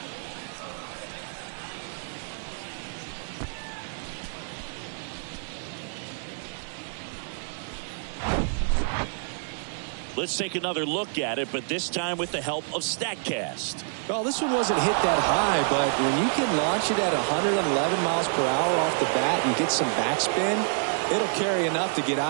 Let's take another look at it, but this time with the help of StatCast. Well, this one wasn't hit that high, but when you can launch it at 111 miles per hour off the bat and get some backspin, it'll carry enough to get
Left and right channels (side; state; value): left; silent; digital silence